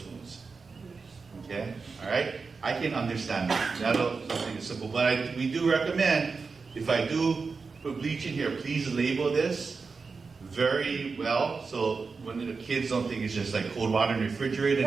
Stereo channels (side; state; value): left; quieter; 4.7 dB